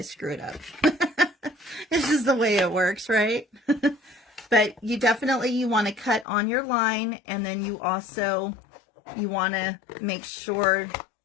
screw it up. This is the way it works, right? But you definitely, want to cut on your line, and then you want to make sure,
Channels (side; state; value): right; drops out; at 6.2 s